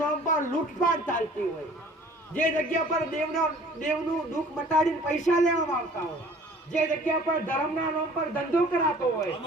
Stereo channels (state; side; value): normal; both; correlation 0.50